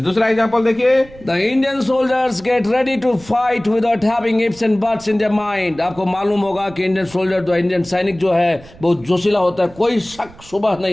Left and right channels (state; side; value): noise; right; rumble, 22 dB below the sound